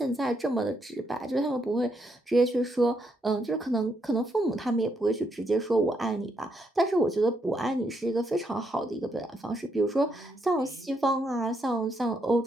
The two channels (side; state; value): both; normal; correlation 0.77